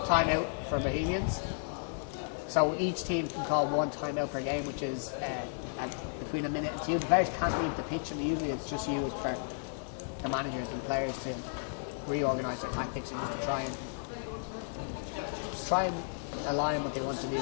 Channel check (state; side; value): silent; right; digital silence